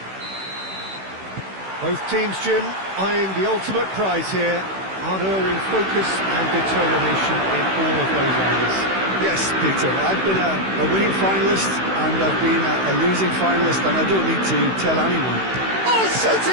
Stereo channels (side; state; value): left; late; 16 ms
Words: Both teams, Jim, eyeing the ultimate prize here, unerring focus and determination in all of those areas. Yes, Peter, I've been a winning finalist and I've been a losing finalist, and I don't need to tell anyone. Oh,